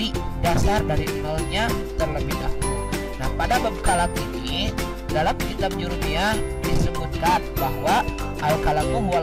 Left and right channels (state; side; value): identical; both; correlation 1.00